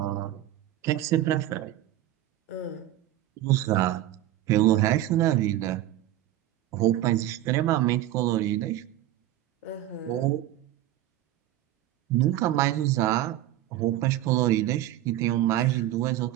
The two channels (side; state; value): left; quieter; 13.5 dB